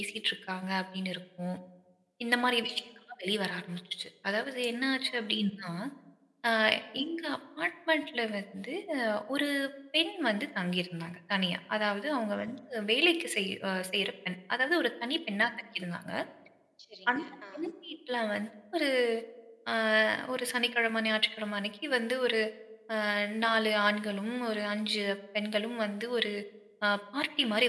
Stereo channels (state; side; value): identical; both; correlation 1.00